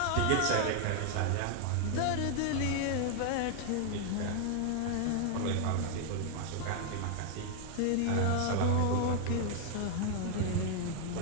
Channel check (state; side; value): different; both; correlation 0.00